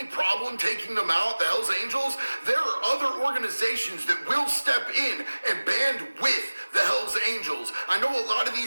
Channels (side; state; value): both; inverted; correlation -1.00